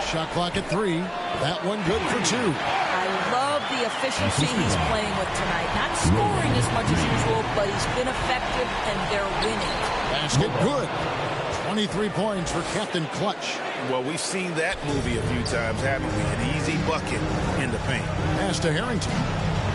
Shot clock at 3. That one good for 2. I love the efficiency he's playing with tonight. Not scoring as much as usual, but he's been effective, and they're winning. Basket good. 23 points for Captain Clutch. Well, we've seen that movie a few times, haven't we? An easy bucket in the paint. Pass to Harrington.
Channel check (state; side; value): identical; both; correlation 1.00